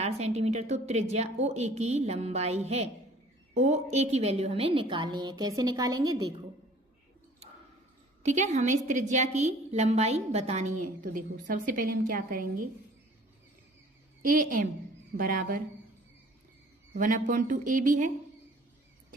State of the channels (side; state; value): both; normal; correlation 0.52